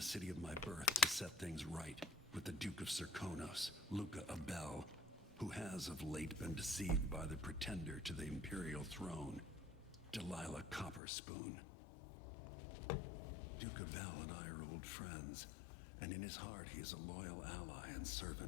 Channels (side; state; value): right; drops out; at 11.0 s